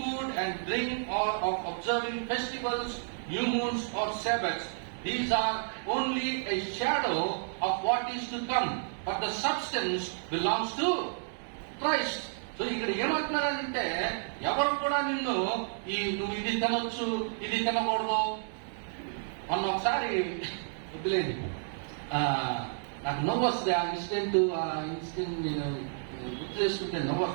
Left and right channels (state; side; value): silent; left; 57 dB below the other